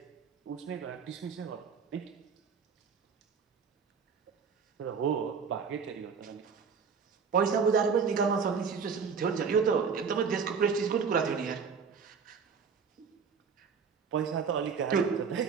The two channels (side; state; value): left; quieter; 6.0 dB